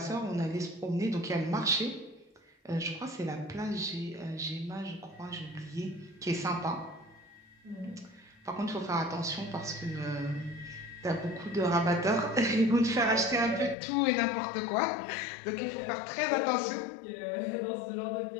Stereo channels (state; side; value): drops out; right; at 13.8 s